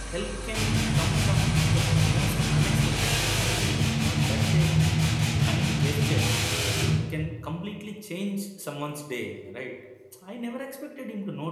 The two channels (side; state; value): both; identical; correlation 1.00